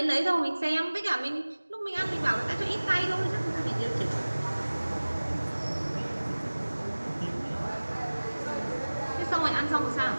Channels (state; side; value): inverted; both; correlation -1.00